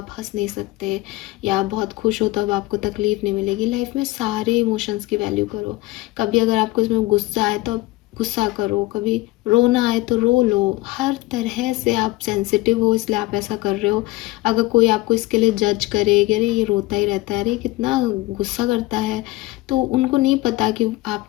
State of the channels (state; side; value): quieter; right; 19.3 dB